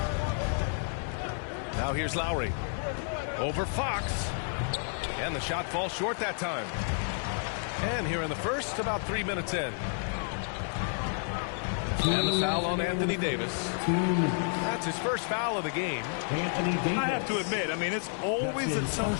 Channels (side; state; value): right; silent; 57 dB below the other